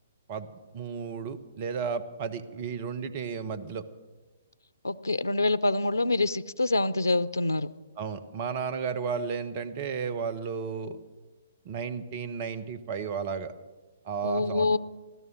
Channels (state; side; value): inverted; both; correlation -0.67